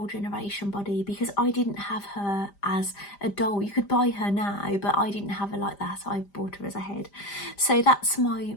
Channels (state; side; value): late; right; 5.0 ms